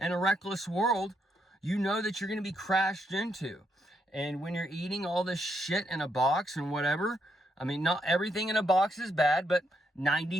a reckless world, you know that you're going to be crashed into. And when you're eating all this shit in a box and whatever, I mean, not everything in a box is bad, but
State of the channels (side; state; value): both; normal; correlation 0.78